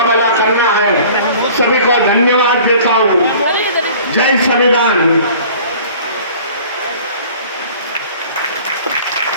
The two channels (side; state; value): both; inverted; correlation -0.47